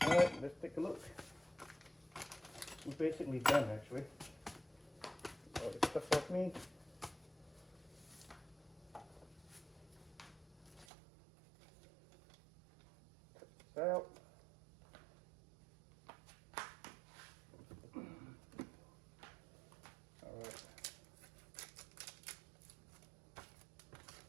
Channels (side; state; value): left; drops out; at 10.9 s